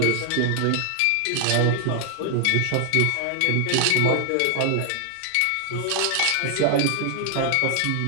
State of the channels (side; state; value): both; different; correlation 0.00